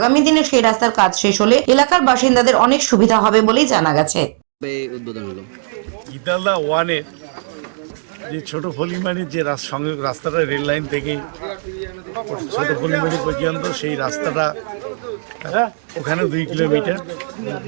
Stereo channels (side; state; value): left; silent; digital silence